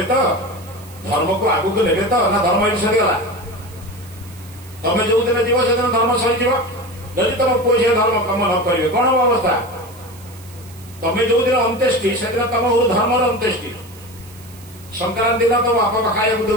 ତ? ଧର୍ମକୁ ଆଗକୁ ନେବେ ତ? ନା ଧର୍ମ ଏଠି ସରିଗଲା? ତମେ ଯୋଉଦିନ ଯିବ ସେଦିନ ଧର୍ମ ସରିଯିବ। ଯଦି ତମ ପୁଅ ଝିଅ ଧର୍ମ କାମ ନ କରିବେ କଣ ହବ ଅବସ୍ଥା? ତମେ ଯୋଉଦିନ ଅନ୍ତେଷ୍ଟି ସେଦିନ ତମ ଧର୍ମର ଅନ୍ତେଷ୍ଟି। ସଂକ୍ରାନ୍ତି ଦିନ ତମ ବାପା ଖାଇବାକୁ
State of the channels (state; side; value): noise; right; hiss, 22 dB below the sound